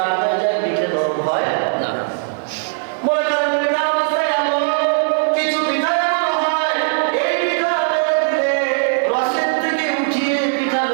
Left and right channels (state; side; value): silent; left; digital silence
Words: হয়ে যায় পিঠে নরম হয় না। মনে করেন পিঠা অবস্থায় এমন কিছু পিঠা এমন হয়, এই পিঠা বেড়ে দিলে রসের থেকে উঠিয়ে পিঠা